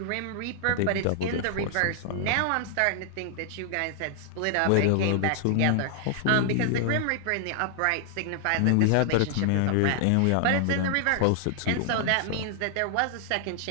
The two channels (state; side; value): different; both; correlation -0.01